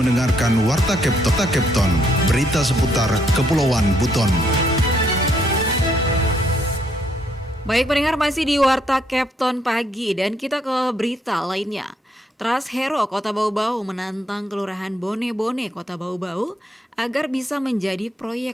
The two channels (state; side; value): normal; both; correlation 0.71